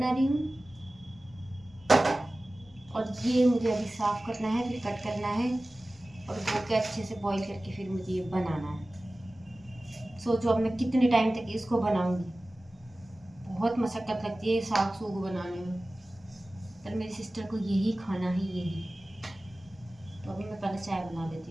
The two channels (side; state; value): both; normal; correlation 0.97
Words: रही हूँ और ये मुझे अभी साफ करना है, फिर कट करना है और धो के अच्छे से बॉईल करके फिर मुझे ये बनाना है। सोचो अब मैं कितने टाइम तक इसको बनाऊंगी। बहुत मशक्कत लगती है साग सूग बनाने में, पर मेरी सिस्टर को यही खाना है, यही। तो अभी मैं पहले चाय बना